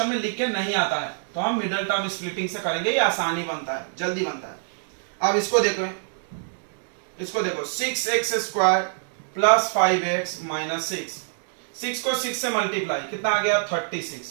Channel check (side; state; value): left; silent; digital silence